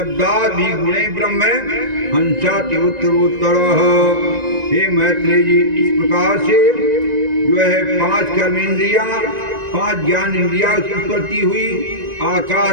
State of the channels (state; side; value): late; left; 1.9 ms